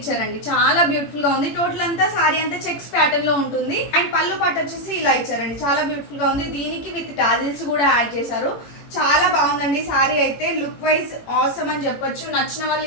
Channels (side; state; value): right; late; 18 ms